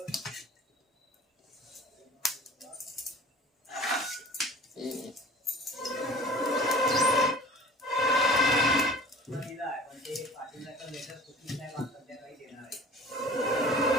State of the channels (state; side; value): normal; both; correlation 0.44